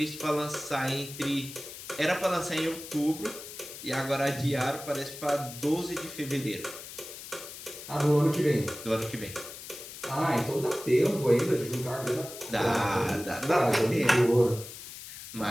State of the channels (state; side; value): noise; left; hiss, 12 dB below the sound